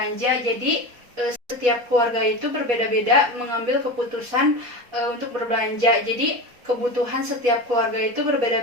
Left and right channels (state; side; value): late; left; 4.2 ms